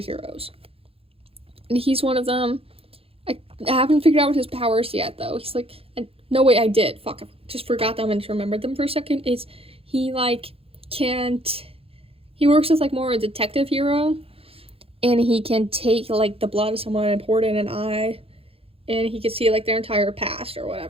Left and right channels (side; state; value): left; late; 0.27 ms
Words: And he's one of them. I haven't figured out what his powers yet, though. He's like, no way, I did. Fuck, I just forgot them and remembered them for a second. Is he like he works as like more a detective hero, and he can take like the blood of someone and pour it in an eye, and he can see like their entire past or